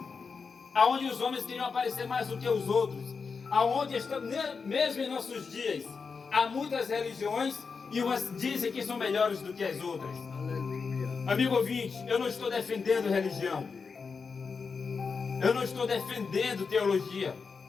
aonde os homens queriam aparecer mais do que os outros, aonde mesmo em nossos dias há muitas religiões e umas dizem que são melhores do que as outras. Aleluia. Amigo ouvinte, eu não estou defendendo religião, eu não estou defendendo teologia,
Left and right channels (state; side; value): quieter; right; 5.2 dB